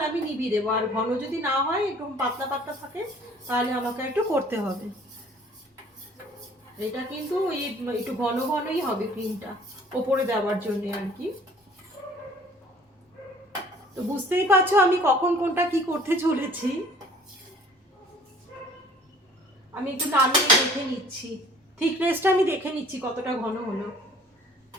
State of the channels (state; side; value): normal; both; correlation 0.53